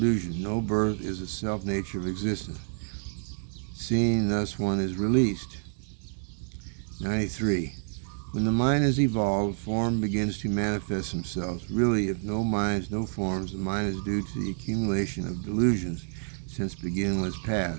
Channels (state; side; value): silent; left; digital silence